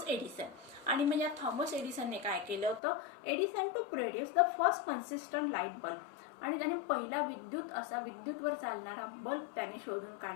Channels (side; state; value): right; drops out; at 2.8 s